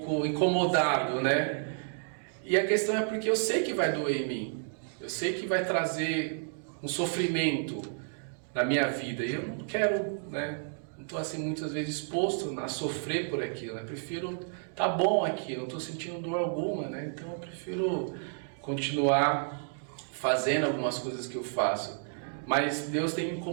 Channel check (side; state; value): left; silent; digital silence